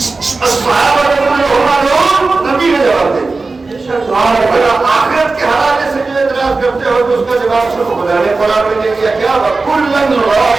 الصحابہ کلھم عدو، نبی نے جواب دے دیا۔ آخرت کے حوالے سے جو اعتراض کرتے ہو تو اس کا جواب صرف خدا نے قرآن میں دے دیا، کیا وَكُلًّا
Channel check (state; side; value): quieter; left; 3.8 dB